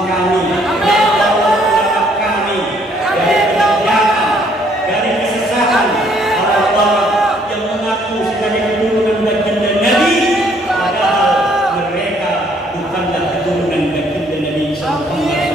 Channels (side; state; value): both; normal; correlation 0.65